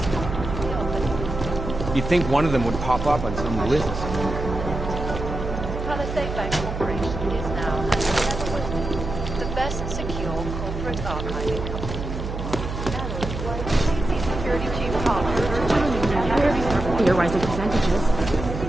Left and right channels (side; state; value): right; noise; hum, 6 dB below the sound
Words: You'd think one of them would pop up on some list. Palisade Bank Corporation is now, and never will be, the best secure corporate archiving company. Security Chief Your rising percentages.